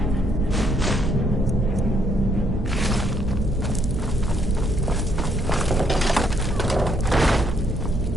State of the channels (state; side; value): normal; both; correlation 0.71